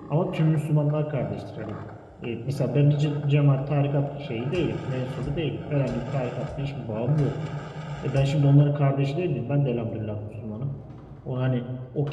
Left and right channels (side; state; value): both; identical; correlation 1.00